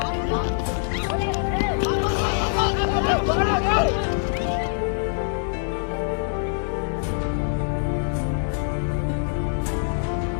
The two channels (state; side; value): silent; right; 63 dB below the other